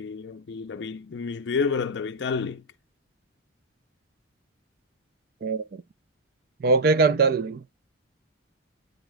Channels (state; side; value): normal; both; correlation -0.06